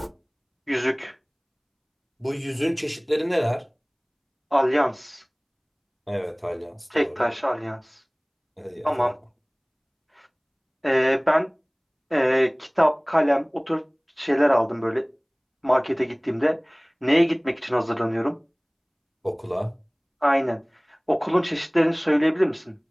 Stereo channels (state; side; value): identical; both; correlation 1.00